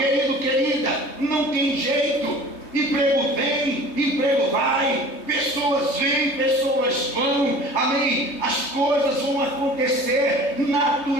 querida, não tem jeito. Emprego vem, emprego vai, pessoas vêm, pessoas vão, amém? As coisas vão acontecer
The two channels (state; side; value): late; right; 3.2 ms